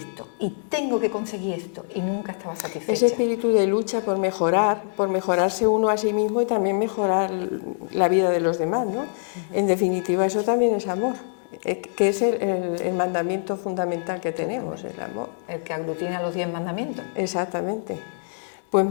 y tengo que conseguir esto, y nunca estaba satisfecha. Ese espíritu de lucha por mejorarse uno a sí mismo y también mejorar la vida de los demás, ¿no? En definitiva, eso también es amor, que es el mandamiento fundamental que tenemos, el amor. El que aglutina los 10 mandamientos. Exactamente. Pues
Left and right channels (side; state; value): right; silent; 58 dB below the other